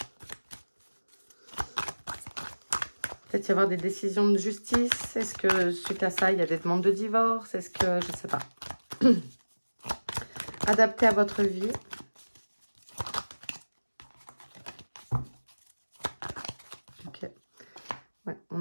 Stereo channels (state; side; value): inverted; both; correlation -1.00